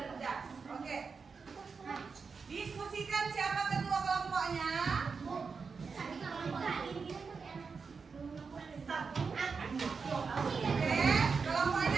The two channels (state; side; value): quieter; left; 5.2 dB